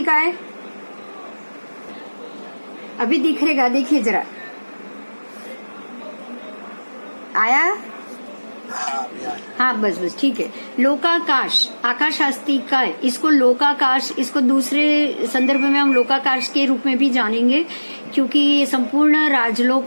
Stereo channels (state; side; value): inverted; both; correlation -1.00